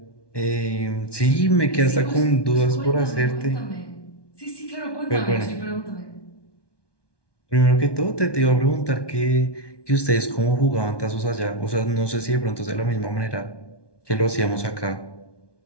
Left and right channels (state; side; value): late; right; 1.2 ms